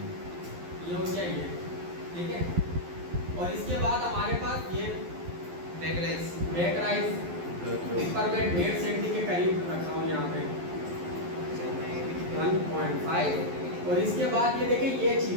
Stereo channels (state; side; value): late; left; 11 ms